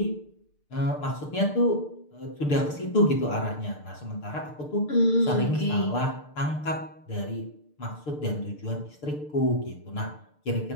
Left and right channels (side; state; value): right; late; 6.7 ms